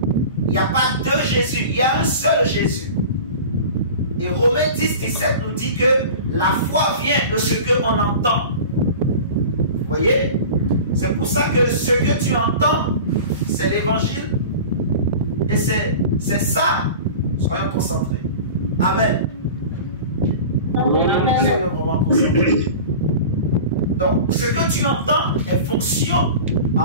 Il n'y a pas deux Jésus. Il y a un seul Jésus. Et Romains 10, 17 nous dit que la foi vient de ce qu'on entend. Vous voyez? C'est pour ça que ce que tu entends, c'est l'évangile. Et c'est ça. Soyons concentrés. Amen. Soyons vraiment concentrés. Donc, ce que tu entends est fonction,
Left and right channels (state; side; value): inverted; both; correlation -0.36